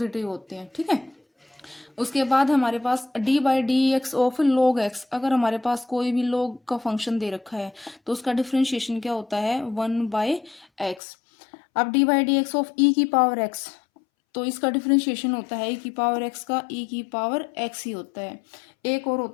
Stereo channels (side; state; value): right; drops out; at 11.0 s